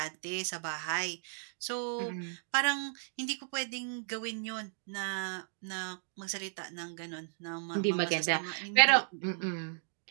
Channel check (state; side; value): silent; left; digital silence